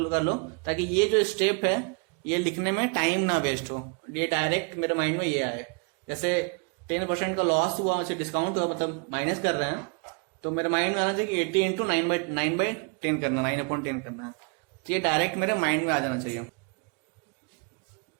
लो, ताकि ये जो स्टेप है ये लिखने में टाइम ना वेस्ट हो, ये डायरेक्ट मेरे माइंड में ये आए। जैसे 10% का लॉस हुआ, उसे डिस्काउंट हुआ, मतलब माइनस कर रहे हैं, तो मेरे माइंड में आना चाहिए कि 80 इंटू 9/10 करना, 9/10 करना है, तो ये डायरेक्ट मेरे माइंड में आ जाना चाहिए।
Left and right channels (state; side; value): quieter; left; 33.9 dB